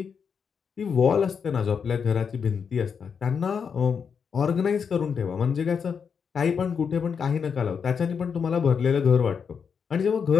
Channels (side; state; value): right; quieter; 6.5 dB